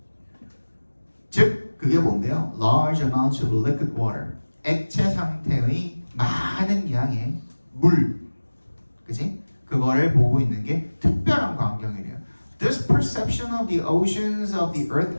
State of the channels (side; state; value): both; inverted; correlation -1.00